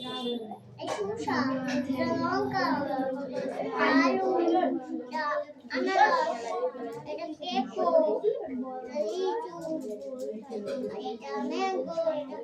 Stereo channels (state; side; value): identical; both; correlation 1.00